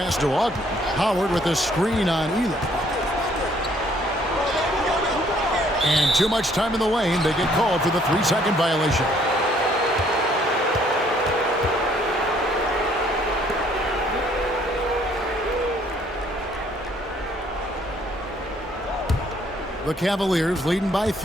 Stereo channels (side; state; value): both; normal; correlation 0.63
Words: to Ogden. Howard with a screen on Elam. And too much time in the lane. They get called for the 3-second violation. The Cavaliers leading by